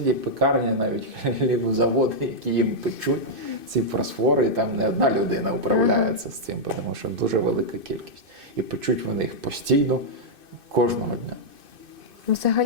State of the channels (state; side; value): late; left; 2.6 ms